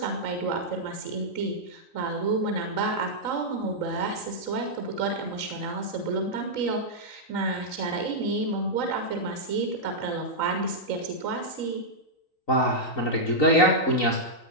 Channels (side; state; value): right; late; 3.9 ms